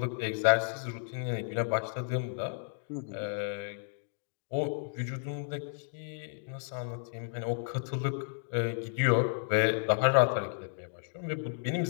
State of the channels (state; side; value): silent; right; digital silence